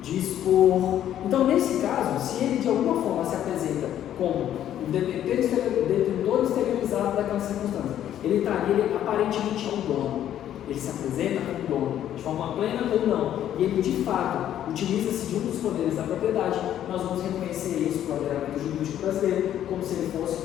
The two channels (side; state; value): right; quieter; 11.1 dB